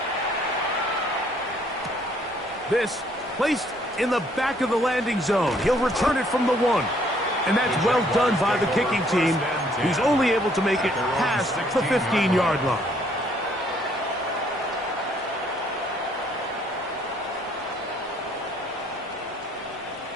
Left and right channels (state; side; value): normal; both; correlation 0.64